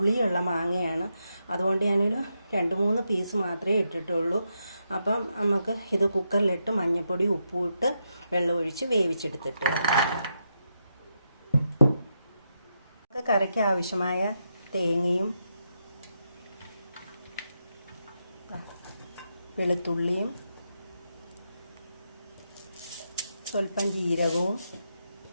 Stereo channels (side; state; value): both; inverted; correlation -0.83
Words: മാങ്ങയാണ്. അതുകൊണ്ട് ഞാനൊരു 2-3 പീസ് മാത്രമേ ഇട്ടിട്ടുള്ളൂ. അപ്പം നമുക്ക് ഇത് കുക്കറിലിട്ട് മഞ്ഞൾപ്പൊടി ഉപ്പും ഇട്ട് വെള്ളമൊഴിച്ച് വേവിച്ചെടുത്തിട്ട് കറിക്ക് ആവശ്യമായ തേങ്ങയും വെളുത്തുള്ളിയും സ്വല്പം ജീരകവും